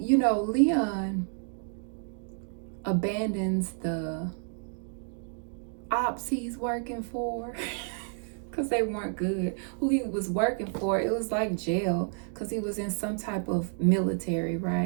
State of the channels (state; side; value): silent; left; 58 dB below the other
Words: Leon abandons the ops he's working for because they weren't good. Who he was working for, it was like jail because he was in some type of military,